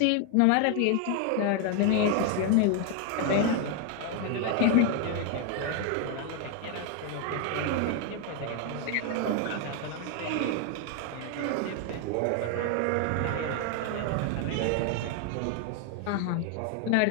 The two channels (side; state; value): both; different; correlation 0.01